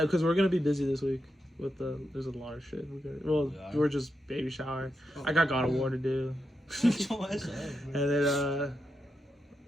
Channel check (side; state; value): both; normal; correlation 0.85